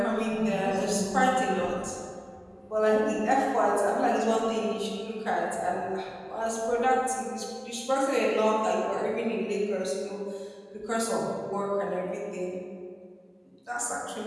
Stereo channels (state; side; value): identical; both; correlation 1.00